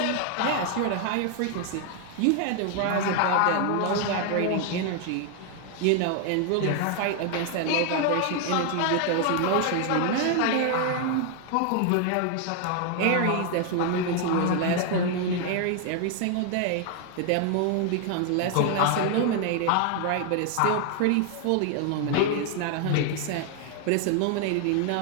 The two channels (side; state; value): both; different; correlation 0.00